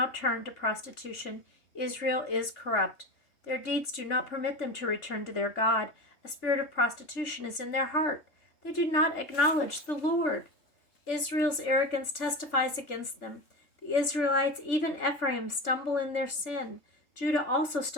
turned to prostitution. Israel is corrupt. Their deeds do not permit them to return to their God. A spirit of prostitution is in their heart. They do not acknowledge the Lord. Israel's arrogance testifies against them. The Israelites, even Ephraim, stumble in their sin. Judah also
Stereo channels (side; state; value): right; late; 3.4 ms